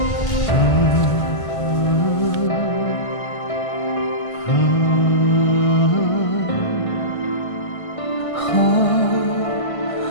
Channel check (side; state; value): right; late; 1.5 ms